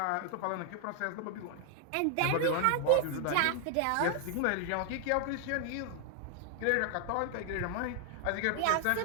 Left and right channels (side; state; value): both; different; correlation 0.00